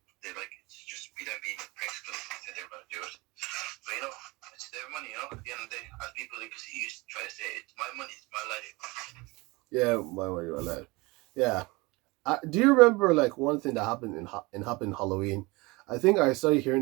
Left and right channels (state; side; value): quieter; left; 24.2 dB